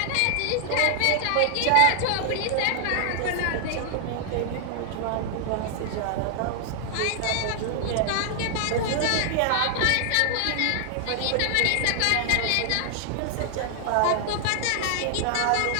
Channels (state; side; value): different; both; correlation 0.00